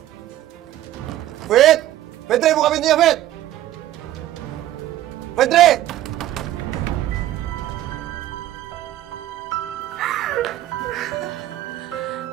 Fit! Fitri, buka pintunya, Fit! Fitri!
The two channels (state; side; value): quieter; left; 13.6 dB